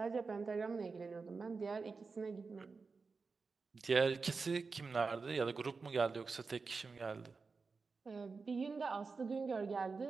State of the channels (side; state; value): left; quieter; 4.5 dB